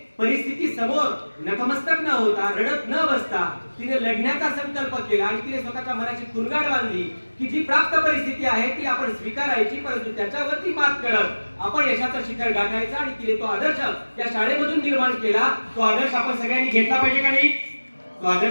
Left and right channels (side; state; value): both; inverted; correlation -1.00